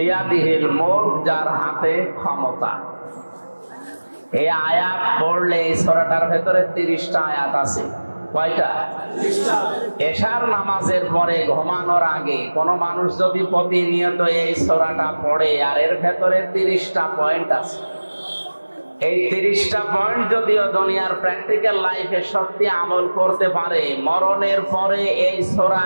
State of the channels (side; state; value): both; inverted; correlation -1.00